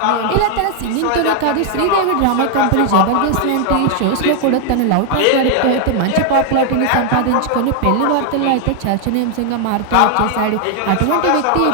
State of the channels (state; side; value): different; both; correlation 0.00